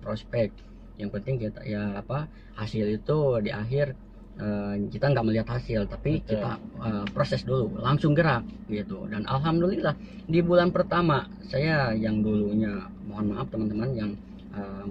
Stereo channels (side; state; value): both; identical; correlation 1.00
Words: yang penting kita ya hasil itu di akhir. Kita nggak melihat hasil, tapi kita proses dulu, langsung gerak gitu. Dan alhamdulillah di bulan pertama saya, yang dulunya mohon maaf teman-teman yang